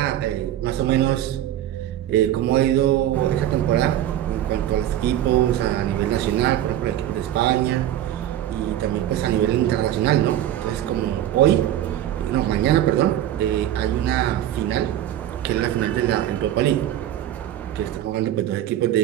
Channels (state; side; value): quieter; left; 12.2 dB